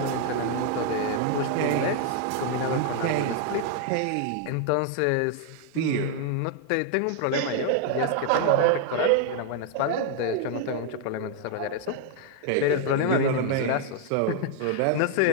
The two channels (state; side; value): different; both; correlation 0.00